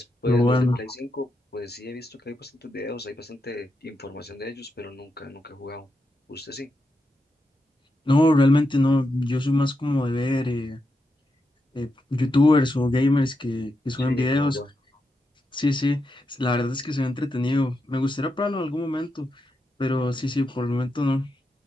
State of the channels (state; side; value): normal; both; correlation 0.85